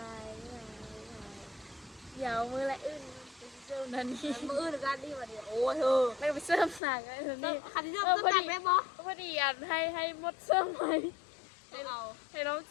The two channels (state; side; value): drops out; right; at 6.8 s